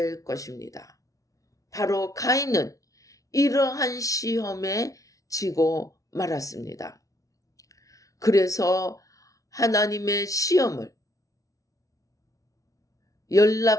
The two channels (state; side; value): late; right; 0.17 ms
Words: 것입니다. 바로 가인은 이러한 시험에 지고 말았습니다. 그래서 하나님의 시험을